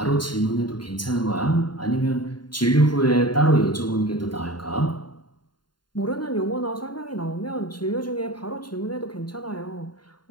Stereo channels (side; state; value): right; late; 0.71 ms